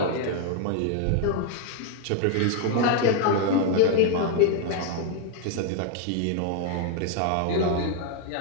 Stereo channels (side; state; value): both; different; correlation 0.00